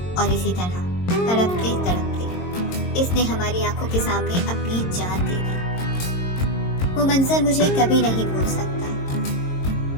اور اسی طرح تڑپتے تڑپتے اس نے ہماری آنکھوں کے سامنے اپنی جان دے دی۔ وہ منظر مجھے کبھی نہیں بھول سکتا۔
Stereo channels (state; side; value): late; right; 22 ms